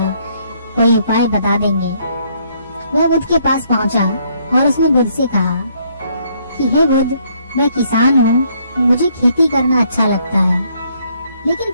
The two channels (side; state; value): both; inverted; correlation -0.69